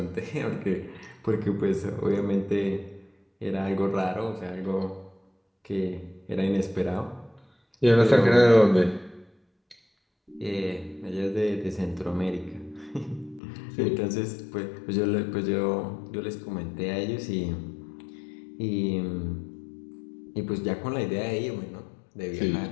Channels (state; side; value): drops out; right; at 13.4 s